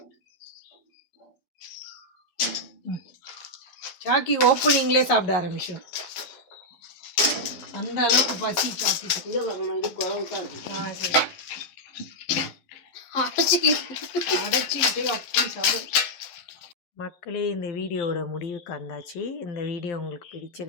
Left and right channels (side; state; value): right; late; 12 ms